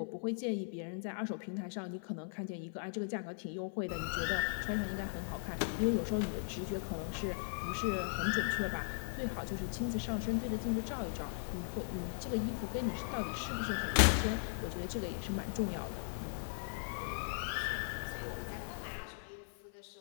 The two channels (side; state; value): right; silent; 52 dB below the other